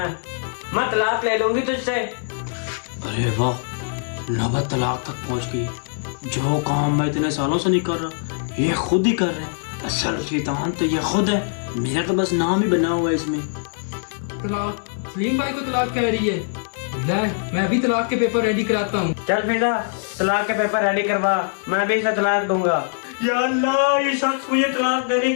तलाक ले लूंगी तुझसे। अरे वाह, नौबत तलाक तक पहुंच गई। जो काम मैं इतने सालों से नहीं कर रहा, ये खुद ही कर रहे हैं। असल शैतान तो ये खुद है, मेरा तो बस नाम ही बना हुआ है इसमें। तलाक, सलीम भाई को तलाक कह रही है। ले, मैं अभी तलाक के पेपर रेडी कराता हूँ। चल फिदा तलाक के पेपर रेडी करवा, मैं भी इसे तलाक दूंगा। या अल्लाह, ये शख्स मुझे तलाक देने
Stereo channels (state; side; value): silent; right; 61 dB below the other